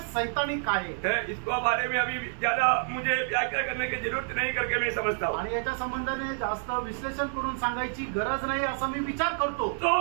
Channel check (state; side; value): silent; left; digital silence